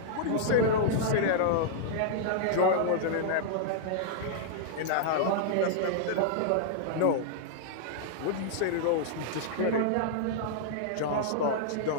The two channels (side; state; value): both; different; correlation -0.01